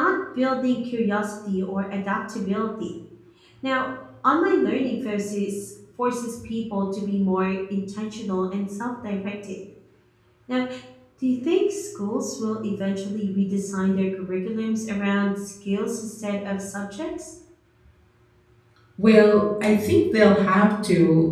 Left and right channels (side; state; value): both; identical; correlation 1.00